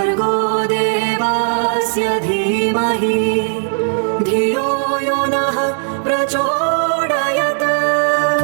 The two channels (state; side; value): silent; left; 68 dB below the other